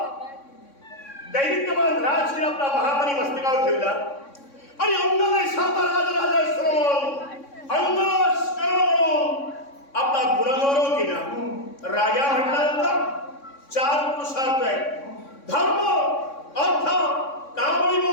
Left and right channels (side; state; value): right; late; 3.6 ms